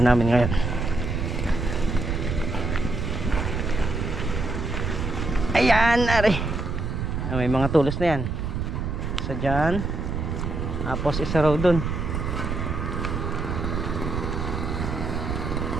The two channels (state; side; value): noise; right; rumble, 2 dB below the sound